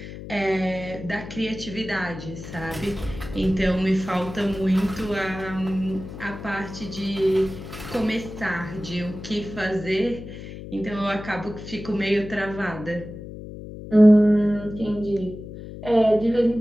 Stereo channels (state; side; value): noise; left; hum, 12 dB below the sound